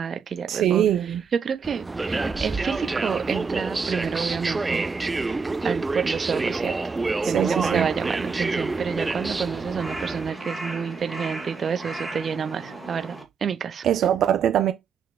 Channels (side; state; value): left; quieter; 5.8 dB